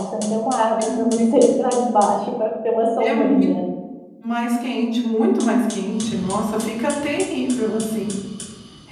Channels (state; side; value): identical; both; correlation 1.00